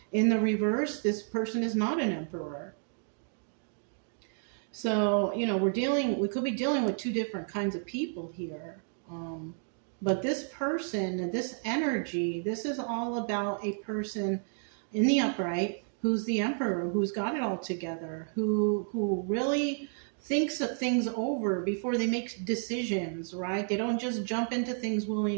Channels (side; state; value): left; silent; 57 dB below the other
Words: In the reverse, this person is not an Emperor. So, you know, we could be dealing with two different kinds of people here. But this person, this energy, this is all about a person in the upright who's the emperor, who's got it all together, who really thinks things over before they make decisions, right? They don't just jump into things